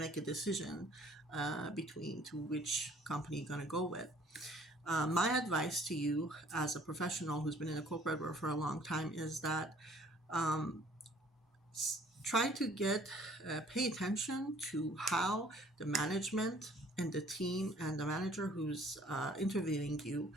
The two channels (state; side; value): normal; both; correlation 0.57